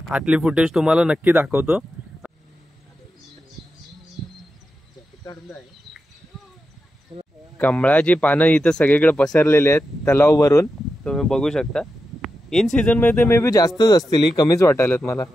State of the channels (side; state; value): both; normal; correlation 0.89